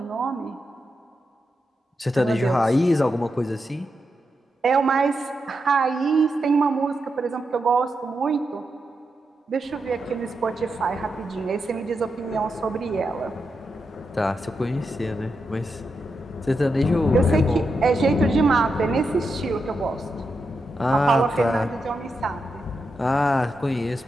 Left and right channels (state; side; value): normal; both; correlation 0.86